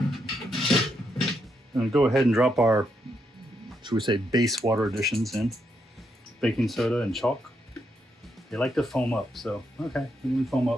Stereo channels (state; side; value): normal; both; correlation 0.79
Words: And go ahead and drop our, should we say, base water additions in. Baking soda and chalk. They like to foam up, so okay, we can foam